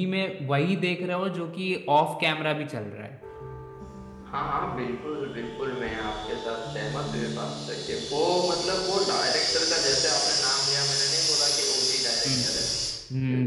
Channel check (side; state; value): both; identical; correlation 1.00